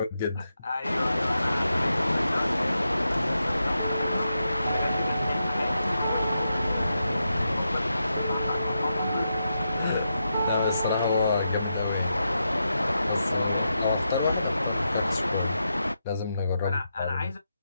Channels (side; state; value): both; inverted; correlation -0.86